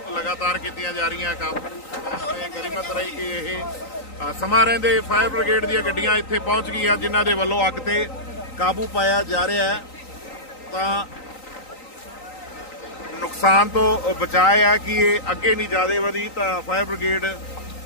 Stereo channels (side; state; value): right; late; 3.9 ms